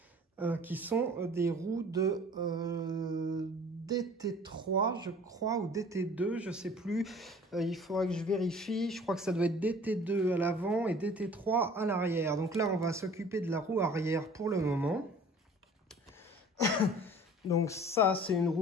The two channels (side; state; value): both; normal; correlation 0.48